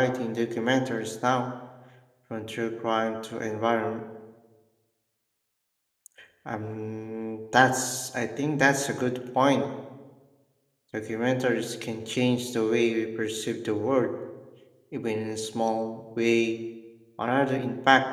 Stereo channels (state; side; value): identical; both; correlation 1.00